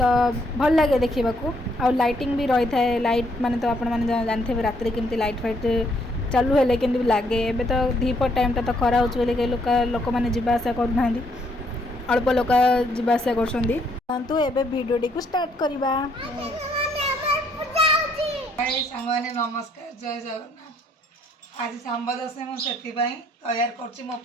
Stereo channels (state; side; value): normal; both; correlation 0.69